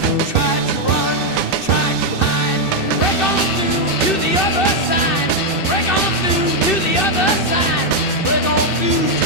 Try to run, try to hide, break on through to the other side, break on through to the other side, break on through to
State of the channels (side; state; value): right; late; 2.6 ms